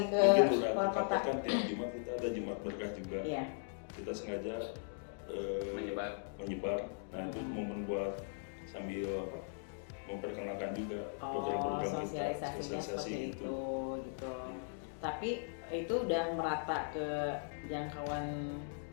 ke luar kota. Kan tiap Jumat kita ada Jumat Berkah juga. Iya. Kita sengaja menyebar. Nah itu momen buat sambil memperkenalkan juga program-program kita, sosialisasinya seperti itu gitu. Tapi itu udah merata ke jangkauan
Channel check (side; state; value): right; silent; digital silence